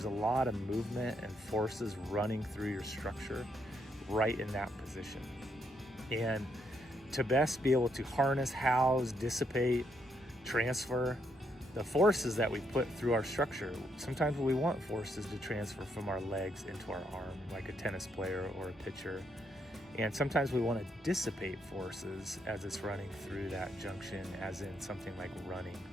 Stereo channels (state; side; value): normal; both; correlation 0.76